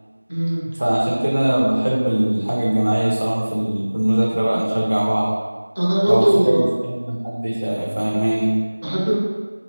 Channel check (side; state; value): both; inverted; correlation -1.00